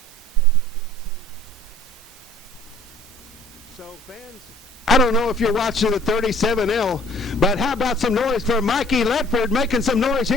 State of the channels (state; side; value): normal; both; correlation 0.53